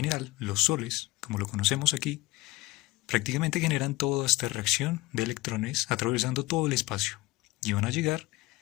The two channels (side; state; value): right; quieter; 20.7 dB